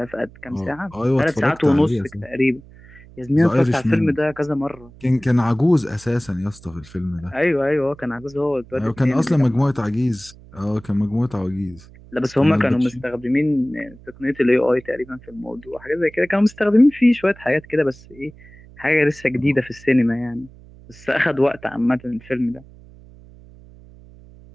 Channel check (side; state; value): right; noise; hum, 22 dB below the sound